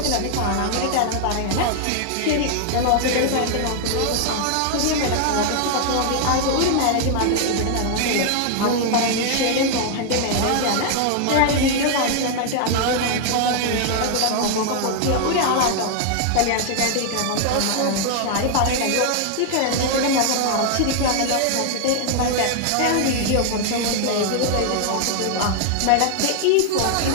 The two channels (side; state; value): both; different; correlation 0.00